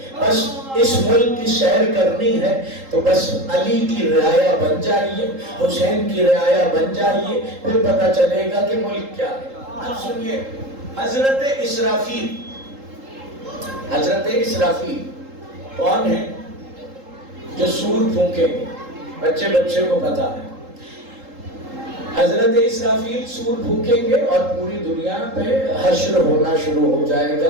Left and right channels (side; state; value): left; late; 3.8 ms